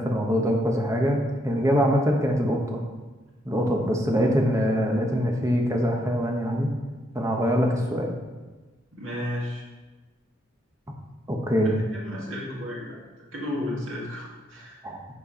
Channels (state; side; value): normal; both; correlation 0.75